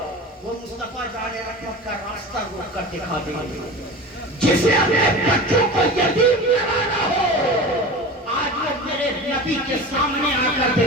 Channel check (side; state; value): both; normal; correlation 0.33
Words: وہ مصطفیٰ جانے رحمت کا راستہ روک کر دکھا دیں گے، جسے اپنے بچوں کو یتیم کرانا ہو آج وہ میرے نبی کے سامنے آ کر